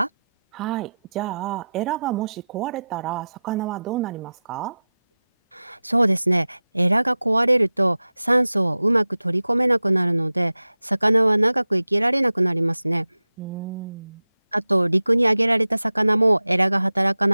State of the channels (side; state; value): both; inverted; correlation -0.93